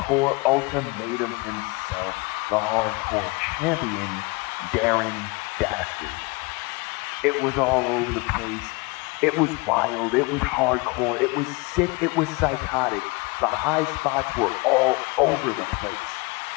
ultimatum himself, the hardcore champion, Darren Dastard. It was all over the place. It was wild, it was hardcore, it was sick, it was psychotic. The high spots were all over the place.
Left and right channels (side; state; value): right; quieter; 27.1 dB